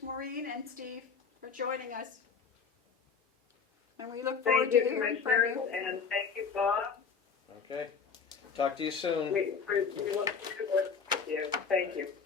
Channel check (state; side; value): quieter; right; 5.8 dB